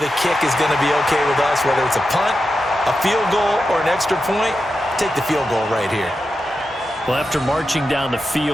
a kick is going to be okay with us, whether it's a punt, a field goal, or an extra point. Take the field goal right here. Well, after marching down the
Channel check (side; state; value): both; normal; correlation 0.89